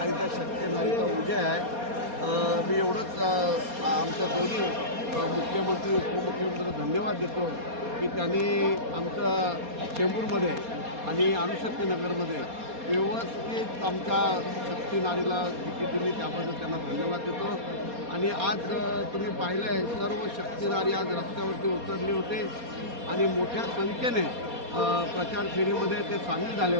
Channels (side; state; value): left; late; 4.2 ms